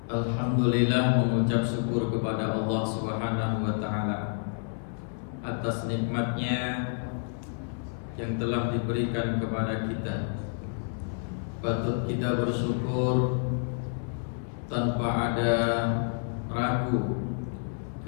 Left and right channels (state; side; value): silent; right; digital silence